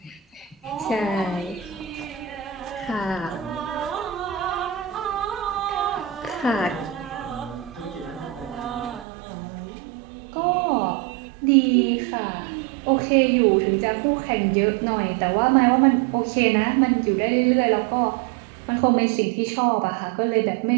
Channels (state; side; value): drops out; left; at 9.1 s